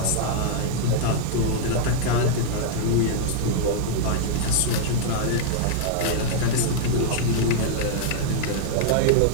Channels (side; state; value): both; different; correlation -0.01